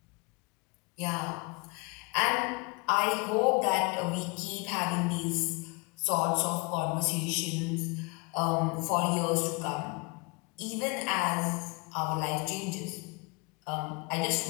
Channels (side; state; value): right; quieter; 29.3 dB